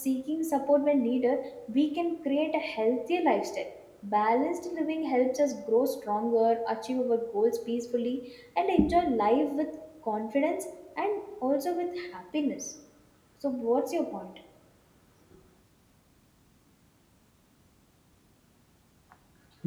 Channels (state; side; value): identical; both; correlation 1.00